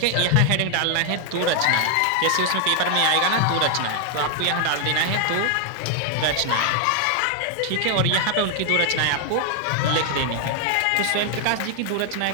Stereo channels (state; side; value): different; both; correlation 0.00